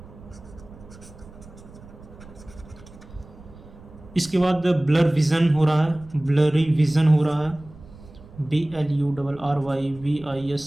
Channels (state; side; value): noise; right; rumble, 20 dB below the sound